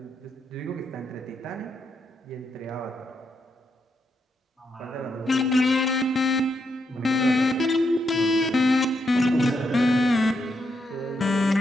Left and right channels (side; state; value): both; normal; correlation 0.80